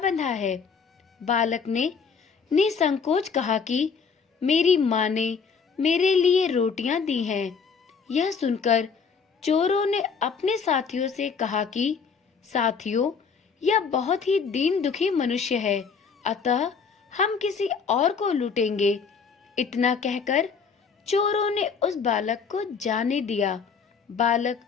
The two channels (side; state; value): right; quieter; 5.7 dB